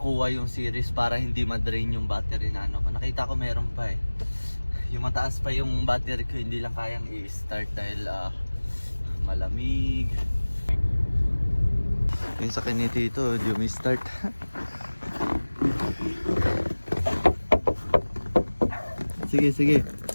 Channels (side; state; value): both; inverted; correlation -1.00